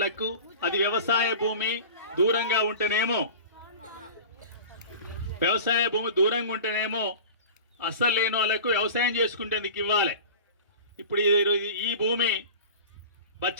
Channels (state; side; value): inverted; both; correlation -0.36